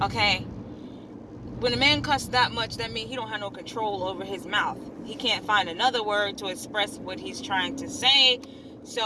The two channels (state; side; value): identical; both; correlation 1.00